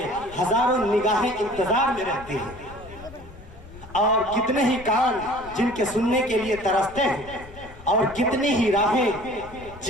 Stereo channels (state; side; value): noise; left; rumble, 18 dB below the sound